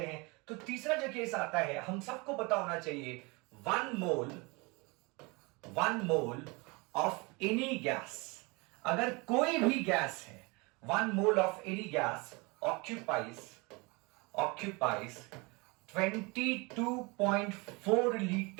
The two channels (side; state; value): left; quieter; 27.1 dB